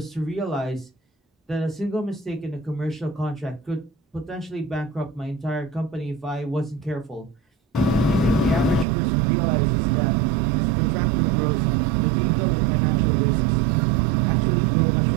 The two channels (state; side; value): drops out; left; at 8.8 s